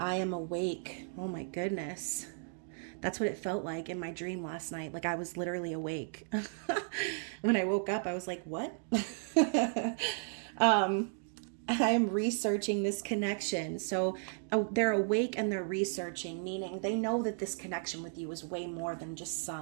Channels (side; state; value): left; silent; 55 dB below the other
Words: am awake. Oh my goodness. That's what it felt like in my dream last night. Like, I was literally awake. When I woke up, I was like, what? I'm researching this connection. So they're awake and they're researching, meaning they know that this connection with you is way more than just